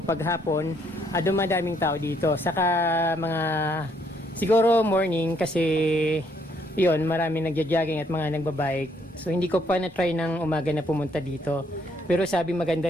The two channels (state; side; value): normal; both; correlation 0.69